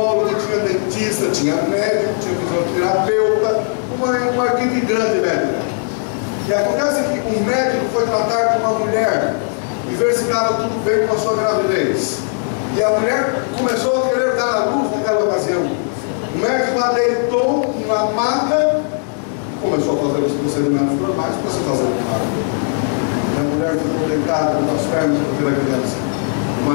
tinha dentista, tinha médico, tinha fisioterapeuta, uma equipe grande médica. E acontece que um médico foi tratar com uma mulher e ver se estava tudo bem com a sua gravidez. E a mulher começou a querer dar à luz naquela ocasião. O médico lá deitou na maca, começou a fazer os procedimentos normais para se fazer o parto. E a mulher ficou deitada com as pernas para ver a criança. O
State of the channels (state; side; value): silent; right; 60 dB below the other